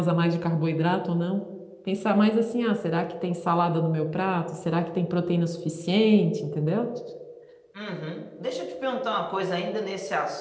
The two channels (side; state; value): both; identical; correlation 1.00